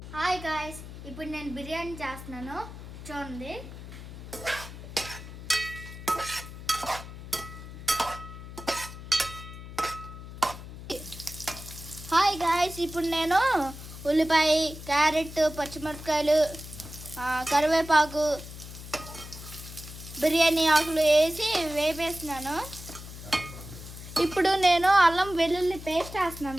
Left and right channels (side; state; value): left; noise; hum, 13 dB below the sound